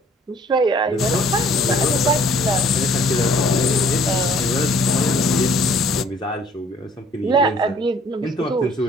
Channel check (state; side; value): normal; both; correlation 0.57